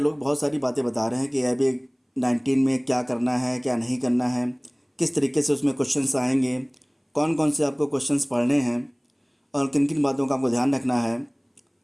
बहुत सारी बातें बता रहे हैं कि AIB-19 में क्या करना है, क्या नहीं करना है, किस तरीके से उसमें क्वेश्चंस आएंगे, कौन कौन से आपको क्वेश्चंस पढ़ने हैं और किन किन बातों का आपको ध्यान रखना है।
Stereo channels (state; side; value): identical; both; correlation 1.00